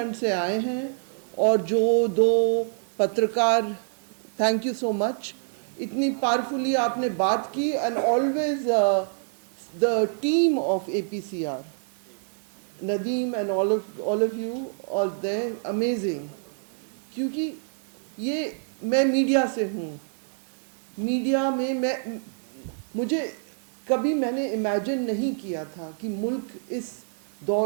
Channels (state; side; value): silent; left; digital silence